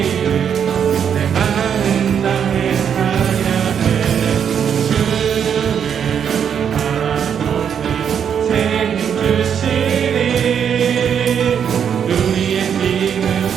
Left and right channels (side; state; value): left; quieter; 8.0 dB